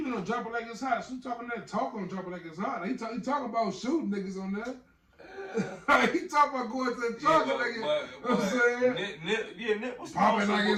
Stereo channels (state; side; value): identical; both; correlation 1.00